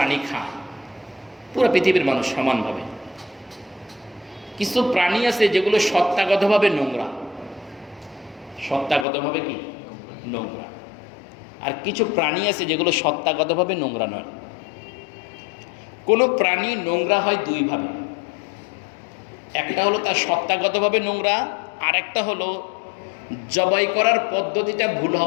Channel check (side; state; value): right; drops out; at 9.1 s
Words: খায়, পুরো পৃথিবীর মানুষ সমানভাবে, কিছু প্রাণী আছে যেগুলো সত্তাগতভাবে নোংরা, সত্তাগতভাবে কি নোংরা, আর কিছু প্রাণী আছে যেগুলো সত্তাগতভাবে নোংরা নয়। কোনো প্রাণী নোংরা হয় দুইভাবে, একটা হলো তার সত্তাগতভাবে নোংরা, আর একটা হলো জবাই করার পদ্ধতিটা ভুল